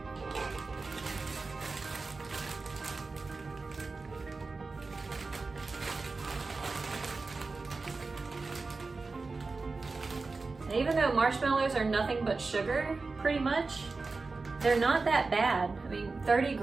And even though marshmallows are nothing but sugar, pretty much, they're not that bad. I mean, 30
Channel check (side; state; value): left; quieter; 3.9 dB